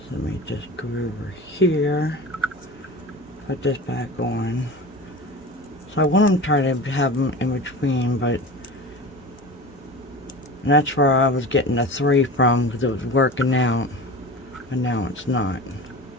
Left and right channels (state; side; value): normal; both; correlation 0.33